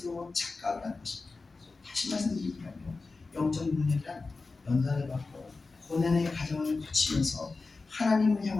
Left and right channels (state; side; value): quieter; right; 3.9 dB